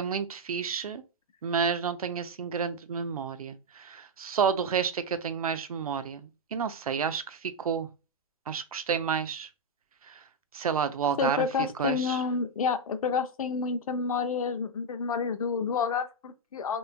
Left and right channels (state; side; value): normal; both; correlation 0.01